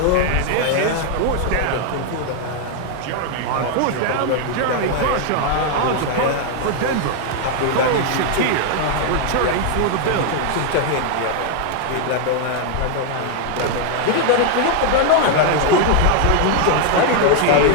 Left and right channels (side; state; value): both; different; correlation 0.00